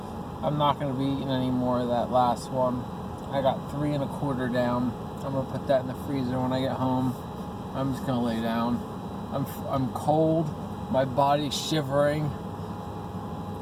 gonna be eating any more of that last one. I got 3 1/4 down. I'm gonna put that in the freezer when I get home. I'm just gonna lay down. I'm cold. My body's shivering,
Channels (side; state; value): both; identical; correlation 1.00